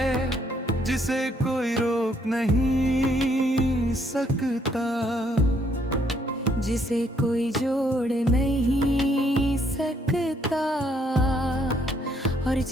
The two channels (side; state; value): both; normal; correlation 0.69